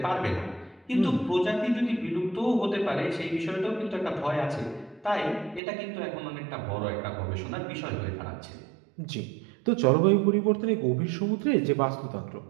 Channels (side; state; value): left; drops out; at 5.6 s